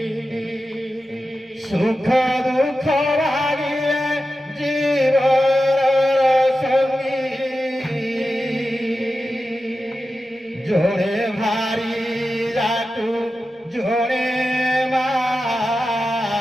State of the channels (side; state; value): both; normal; correlation 0.92